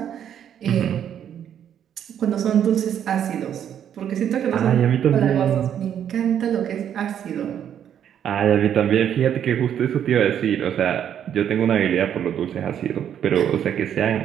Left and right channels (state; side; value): quieter; left; 9.4 dB